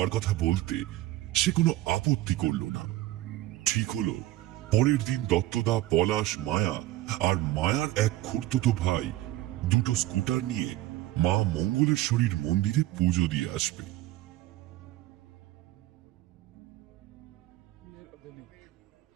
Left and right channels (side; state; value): left; quieter; 15.8 dB